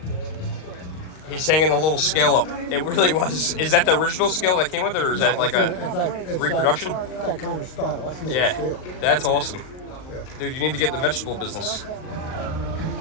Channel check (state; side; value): late; right; 39 ms